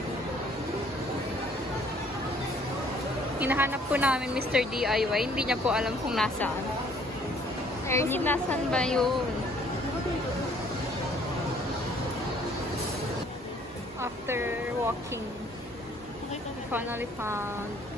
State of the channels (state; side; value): normal; both; correlation 0.60